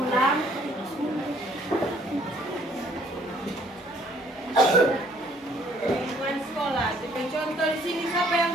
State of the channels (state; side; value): normal; both; correlation 0.61